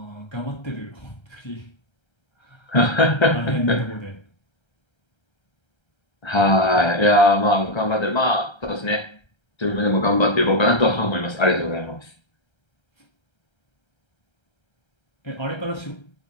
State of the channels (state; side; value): late; right; 1.3 ms